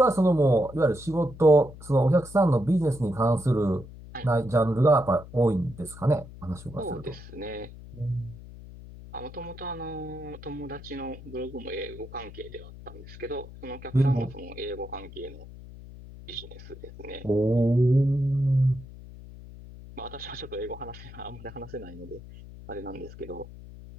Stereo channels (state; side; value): noise; left; hum, 16 dB below the sound